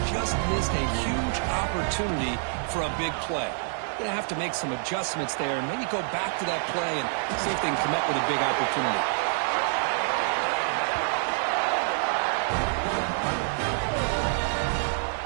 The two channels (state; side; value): silent; left; 60 dB below the other